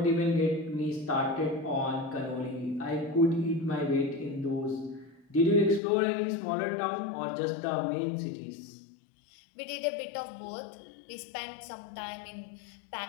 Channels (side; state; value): right; drops out; at 5.8 s